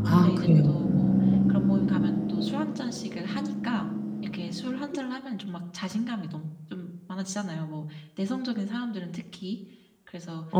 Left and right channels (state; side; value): identical; both; correlation 1.00